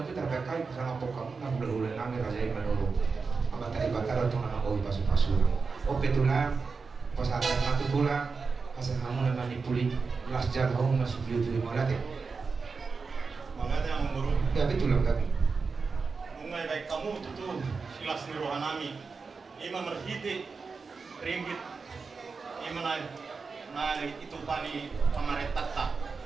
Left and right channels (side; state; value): left; quieter; 4.7 dB